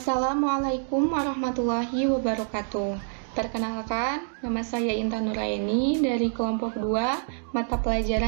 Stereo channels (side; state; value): left; silent; 61 dB below the other